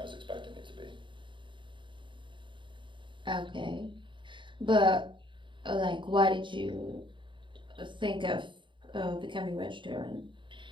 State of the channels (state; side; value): late; left; 0.23 ms